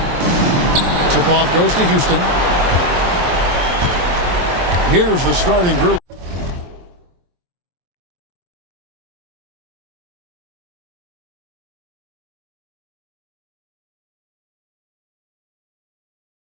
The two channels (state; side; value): late; left; 23 ms